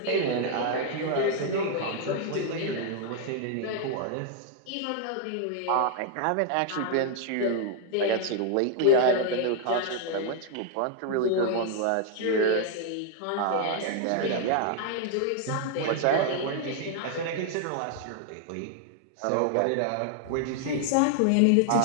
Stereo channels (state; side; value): different; both; correlation 0.00